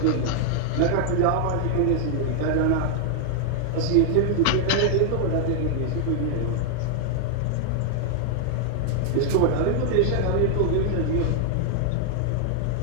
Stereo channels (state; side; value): different; both; correlation 0.00